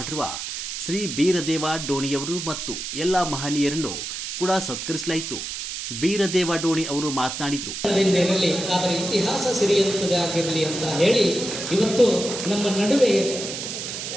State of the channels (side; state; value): right; noise; hiss, 6 dB below the sound